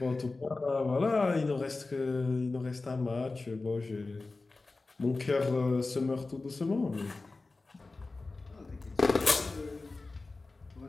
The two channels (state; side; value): quieter; right; 3.5 dB